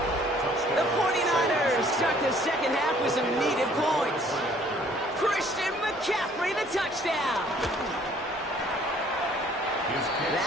The 49ers start the second half with some needed points. Christian McCaffrey, the touchdown.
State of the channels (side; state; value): both; normal; correlation 0.58